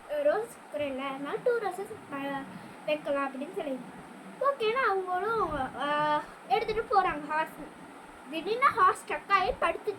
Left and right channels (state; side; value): identical; both; correlation 1.00